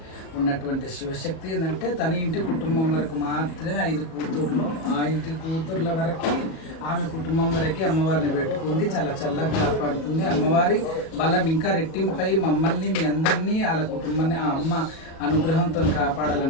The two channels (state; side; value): late; right; 37 ms